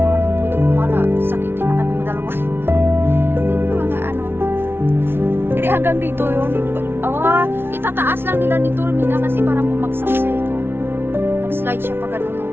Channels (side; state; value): left; late; 0.11 ms